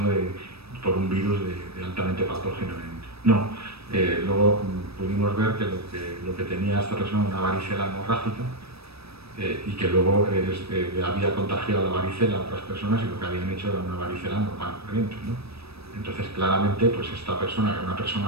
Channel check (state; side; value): late; left; 0.78 ms